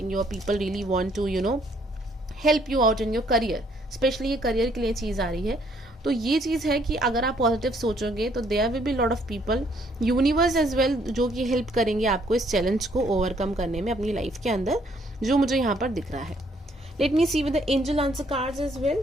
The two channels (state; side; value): normal; both; correlation 0.67